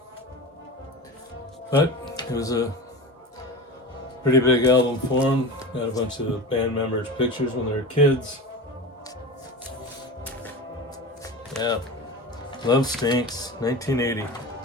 But it was a pretty big album for him. Got a bunch of the band members' pictures when they were kids. Yeah. Love Stinks, 1980.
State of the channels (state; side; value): normal; both; correlation 0.29